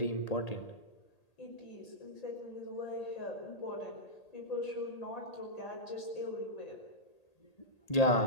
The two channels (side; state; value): right; late; 1.8 ms